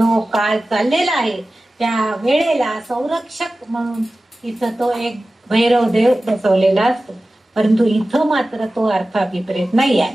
काळ चाललेला आहे त्या वेळेला संरक्षक म्हणून इथं तो एक भैरव देव बसवलेला असतो. परंतु इथं मात्र तो अर्थ अभिप्रेत नाही आहे.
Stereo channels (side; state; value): both; normal; correlation 0.96